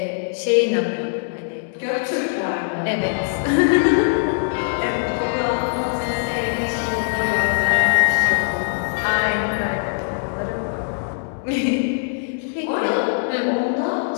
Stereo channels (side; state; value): right; silent; digital silence